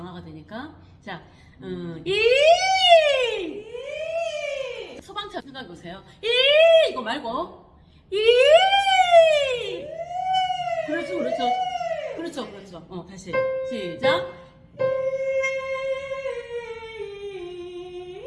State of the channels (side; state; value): both; identical; correlation 1.00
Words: 되니까. 자, 소방차 생각해 보세요. 이거 말고 그렇죠. 다시 시작.